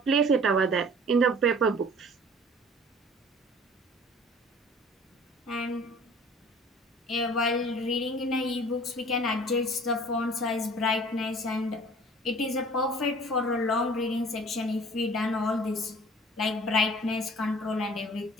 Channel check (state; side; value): normal; both; correlation 0.47